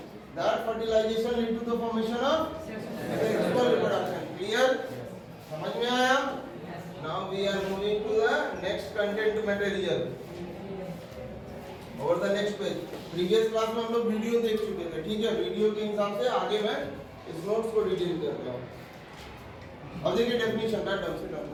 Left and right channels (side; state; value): both; identical; correlation 1.00